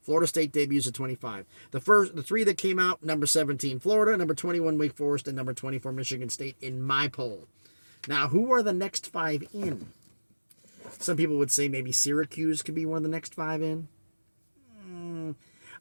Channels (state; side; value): inverted; both; correlation -1.00